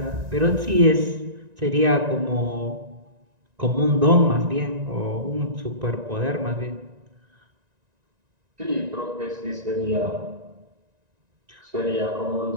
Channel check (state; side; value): late; left; 1.9 ms